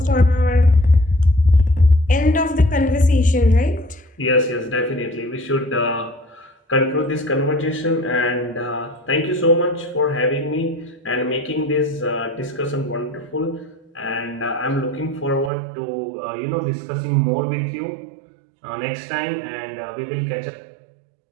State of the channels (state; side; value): drops out; left; at 15.5 s